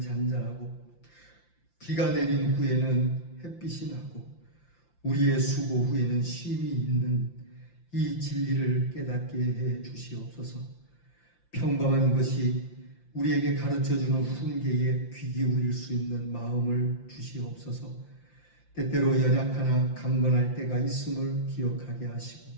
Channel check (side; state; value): right; late; 5.8 ms